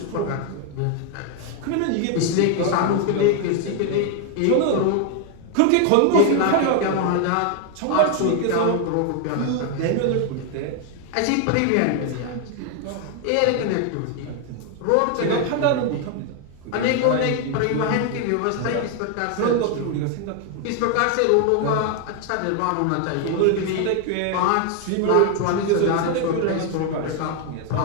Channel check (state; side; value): different; both; correlation 0.00